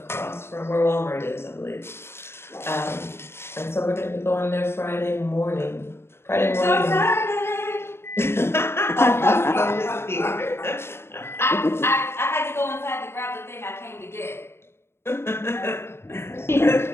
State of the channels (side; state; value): right; late; 0.12 ms